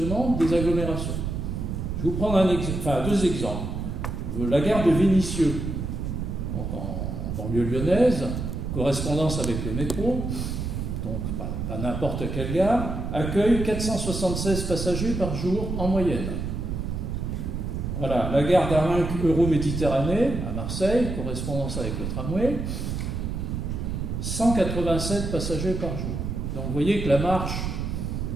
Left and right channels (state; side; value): noise; right; rumble, 3 dB below the sound